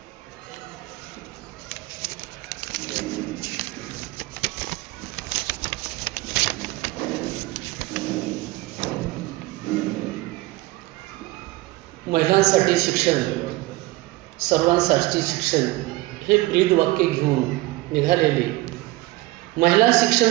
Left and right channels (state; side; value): quieter; left; 19.8 dB